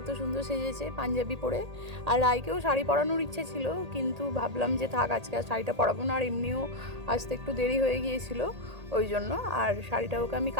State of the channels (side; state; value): left; late; 1.8 ms